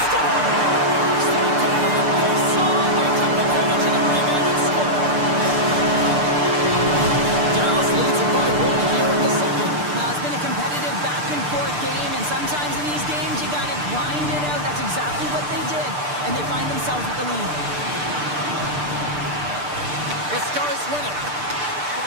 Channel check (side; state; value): left; late; 6.7 ms